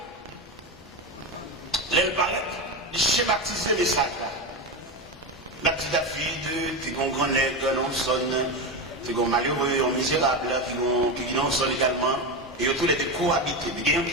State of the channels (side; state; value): both; normal; correlation 0.16